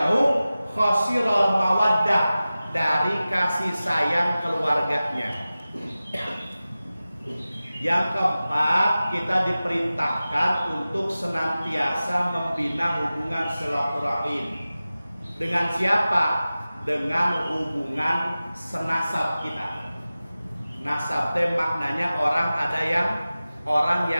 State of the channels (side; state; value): both; inverted; correlation -0.96